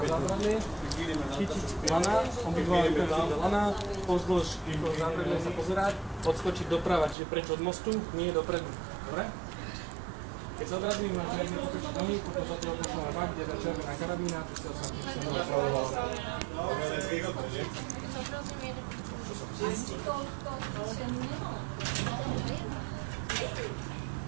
zábradlie, chytiť lana, obidva ruky do lana, pozdĺž zábradlie sa pozerať, odskočiť doprava, čiže preč od mostu, nie dopredu. Dobre? Keď sa odradím, máš riadne potočiť nohy, potom sa toho pošleme bak, kde je červená karabína, pustil sa napravoval.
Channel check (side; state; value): left; drops out; at 7.2 s